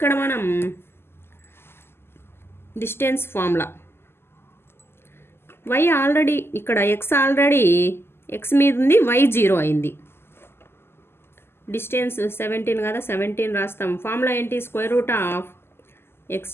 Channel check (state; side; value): late; right; 0.12 ms